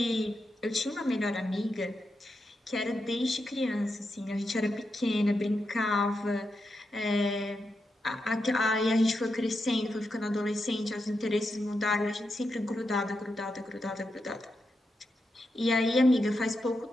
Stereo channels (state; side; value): normal; both; correlation 0.86